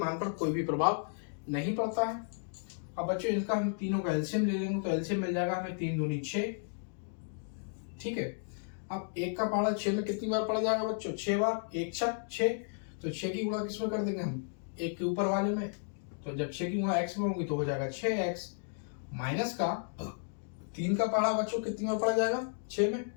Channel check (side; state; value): right; silent; digital silence